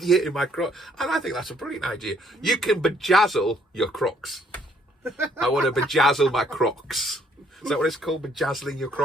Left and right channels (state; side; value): normal; both; correlation 0.65